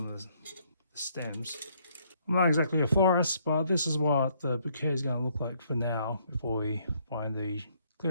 the stems. I'm not exactly a florist, but this is what the bouquet is going to look like for now before we find the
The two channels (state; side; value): inverted; both; correlation -0.68